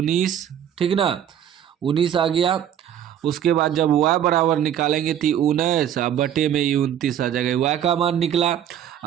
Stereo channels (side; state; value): left; quieter; 10.0 dB